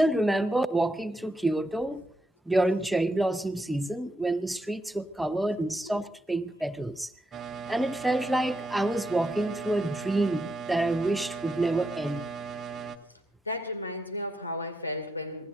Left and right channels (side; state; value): both; normal; correlation 0.82